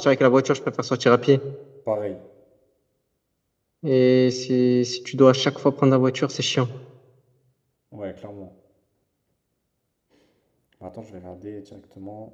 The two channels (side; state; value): both; identical; correlation 1.00